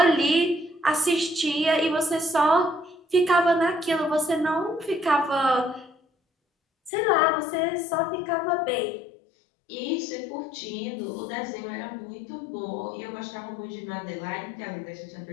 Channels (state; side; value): drops out; right; at 6.9 s